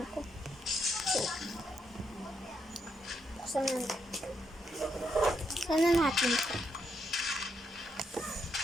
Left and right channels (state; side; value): normal; both; correlation 0.79